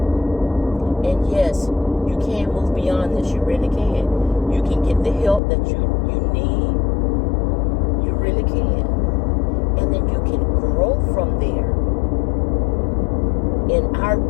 And yes, you can move beyond this. You really can. You can get the help that you need, you really can. And then you can grow from there. In our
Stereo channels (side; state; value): right; drops out; at 5.4 s